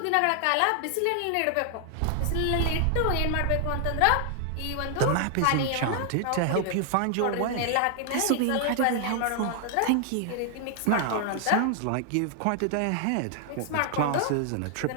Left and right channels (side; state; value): both; different; correlation 0.00